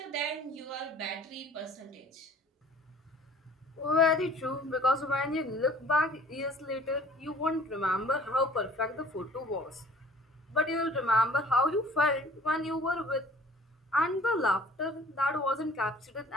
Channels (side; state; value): both; normal; correlation 0.51